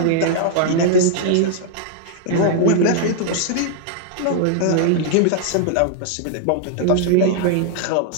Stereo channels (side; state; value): both; different; correlation 0.00